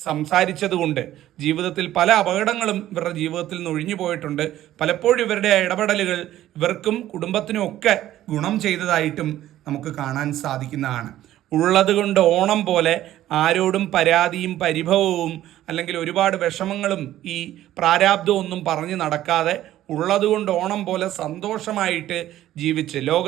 സംസാരിച്ചത് കൊണ്ട് ജീവിതത്തിൽ പല അപകടങ്ങളും ഇവരുടെ ജീവിതത്തിൽ നിന്ന് ഒഴിഞ്ഞു പോയിട്ടുണ്ട്. പലപ്പോഴും ഇവരുടെ ഇടപെടലുകൾ ഇവർക്കും കുടുംബത്തിനും ഒക്കെ ഗുണം ചെയ്തതായിട്ടും നമുക്ക് കാണാൻ സാധിക്കുന്നതാണ്. ഉള്ളത് കൊണ്ട് ഓണം പോലെ ആരോടും പരാതിയും പരിഭവവും അല്ലെങ്കിൽ ഒരുപാട് വിഷമങ്ങളും ഈ പ്രാരാബ്ദവും ഒന്നും പറഞ്ഞു നടക്കാതെ ഉള്ളതുകൊണ്ട് ഓണം പോലെ സന്തോഷമായിട്ട് ജീവിച്ച്,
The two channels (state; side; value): quieter; left; 13.4 dB